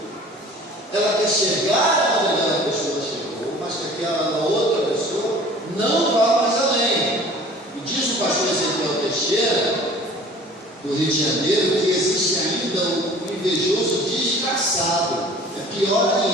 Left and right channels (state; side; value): normal; both; correlation 0.46